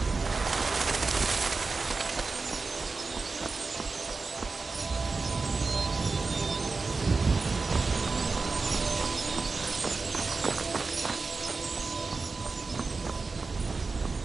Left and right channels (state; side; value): quieter; left; 4.1 dB